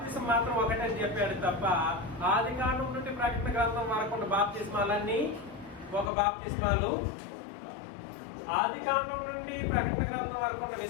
మాత్రం ఒకటని చెప్పాడు తప్ప ఆది కాలం నుండి ప్రకటన గ్రంథం వరకు ఉన్న బాప్తిస్మాలన్నీ ఒక బాప్తిస్మాలు. ఆది కాలం నుండి ప్రకటన గ్రంథం వరకు ఉన్న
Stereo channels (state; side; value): drops out; right; at 6.1 s